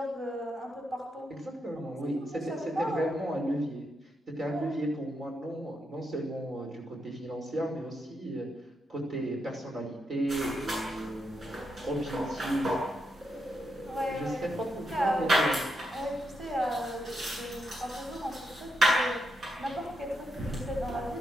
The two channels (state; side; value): normal; both; correlation 0.82